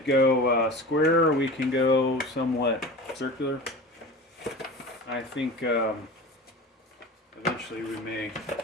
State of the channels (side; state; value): both; normal; correlation 0.34